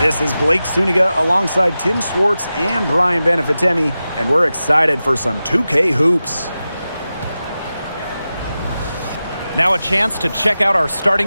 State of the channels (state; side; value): inverted; both; correlation -0.93